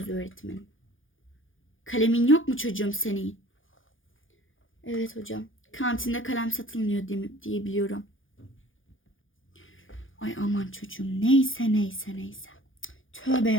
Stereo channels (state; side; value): late; right; 0.58 ms